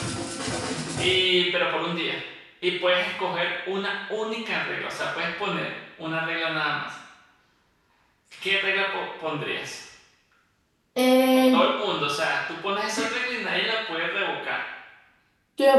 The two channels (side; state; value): both; identical; correlation 1.00